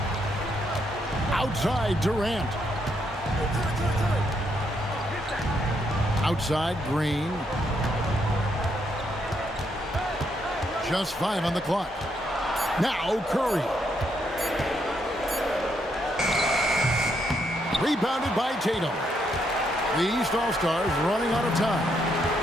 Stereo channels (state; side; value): normal; both; correlation 0.76